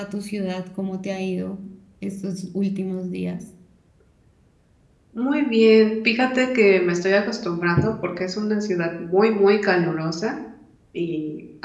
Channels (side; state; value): both; identical; correlation 1.00